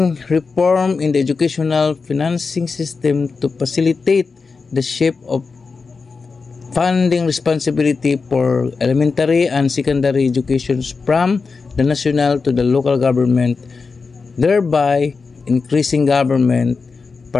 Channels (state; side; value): quieter; right; 4.6 dB